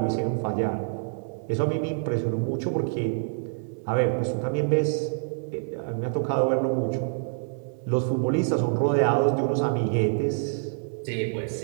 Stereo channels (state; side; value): silent; left; digital silence